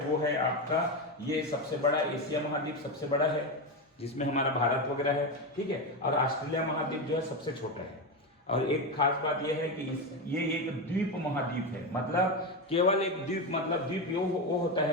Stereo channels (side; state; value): both; normal; correlation 0.13